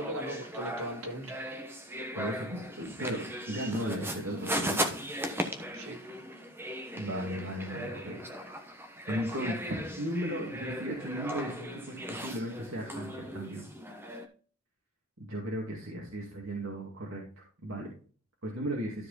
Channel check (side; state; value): both; normal; correlation 0.39